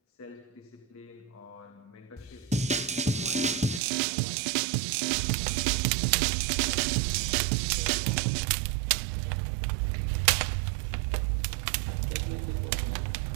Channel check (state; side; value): drops out; left; at 3.8 s